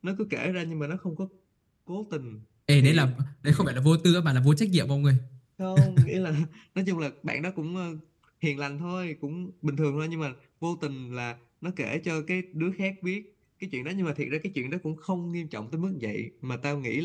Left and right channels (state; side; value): identical; both; correlation 1.00